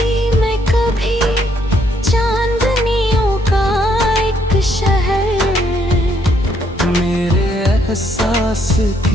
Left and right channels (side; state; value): both; normal; correlation 0.70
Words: में कभी चांदनियों का एक शहर, मेरे एहसास